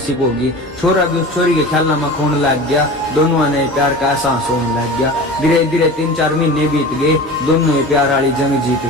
होगी। छोरा भी उस छोरी के ख्याला में खोने लग गया, दोनों ने प्यार का एहसास होने लग गया। धीरे धीरे 3-4 महीने बीत गए, दोनों ये प्यार वाली जंग जीत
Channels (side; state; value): both; normal; correlation 0.35